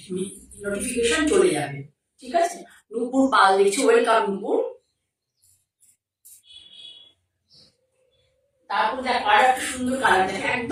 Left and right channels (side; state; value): both; identical; correlation 1.00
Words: নোটিফিকেশন চলে যাবে, ঠিক আছে। নূপুর পাল দেখছি, ওয়েলকাম নূপুর। তারপর দেখো আর একটা সুন্দর কালার, দেখো